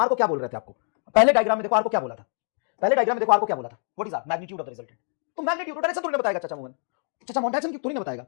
को क्या बोल रहे थे आपको, पहले डायग्राम में देखो आर को क्या बोला था, what is R, magnitude of the resultant. तो मैग्नीट्यूड डायरेक्शन थोड़ी ना बताएगा चाचा मोहन डायरेक्शन थोड़ी ना बताएगा,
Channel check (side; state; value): right; silent; 58 dB below the other